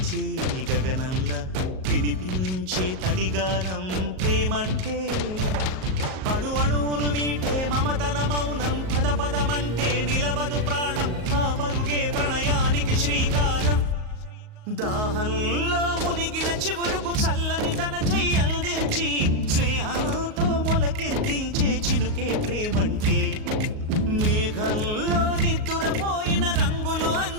గగనంలా వినిపించే తడిగానం ప్రేమంటే అణు అణువును మీటే మమతల మౌనం పద పదమంటే నిలవదు ప్రాణం ఆ పరుగే ప్రణయానికి శ్రీకారం దాహంలో మునిగిన చివురుకు చల్లని తన చెయ్యి అందించి స్నేహంతో మొలకెత్తించే చినుకే ప్రేమంటే మేఘంలో నిద్దురపోయిన రంగులు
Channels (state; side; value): late; left; 38 ms